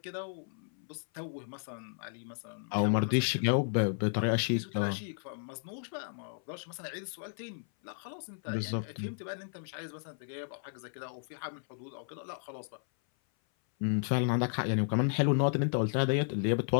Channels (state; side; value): silent; right; 55 dB below the other